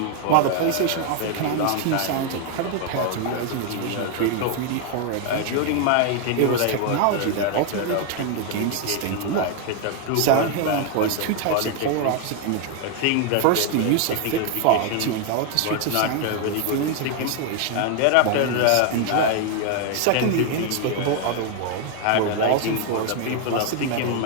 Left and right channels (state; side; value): different; both; correlation 0.00